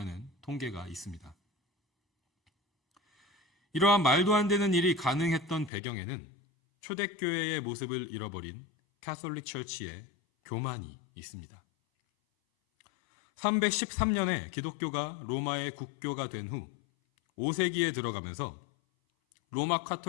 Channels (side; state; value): right; drops out; at 5.7 s